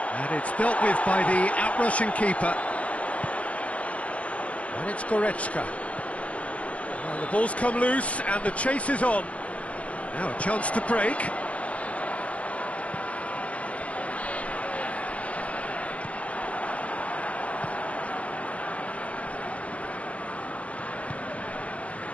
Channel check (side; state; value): right; late; 0.065 ms